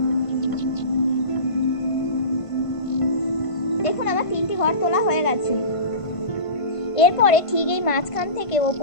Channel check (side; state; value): right; late; 1.5 ms